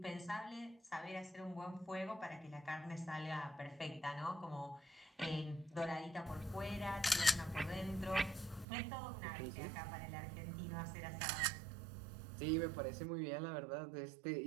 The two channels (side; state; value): left; drops out; at 8.7 s